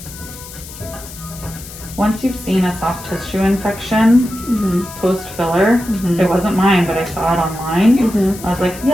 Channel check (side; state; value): left; noise; hiss, 15 dB below the sound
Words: Once you've seen a soft tissue infection post-filler, it wasn't mine, but I saw it online. I was like,